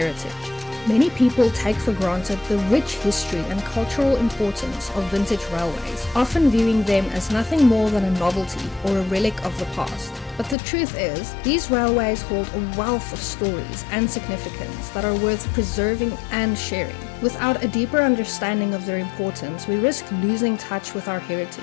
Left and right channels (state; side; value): drops out; right; at 10.6 s